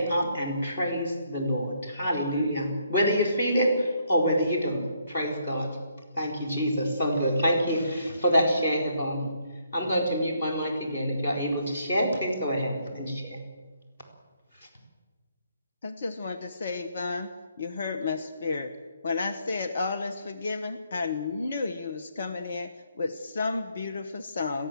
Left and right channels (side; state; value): both; inverted; correlation -0.71